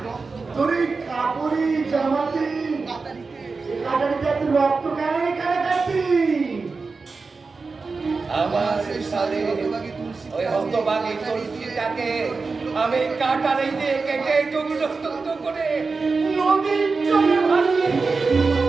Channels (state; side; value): quieter; left; 4.3 dB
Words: রক্ত কেন এখানে কাটছি? আমার সাথে ওই হতভাগী তুলসীটাকে আমি কাটারে দিয়ে কেটে টুকরো টুকরো করে নদীর জলে ভাসিয়ে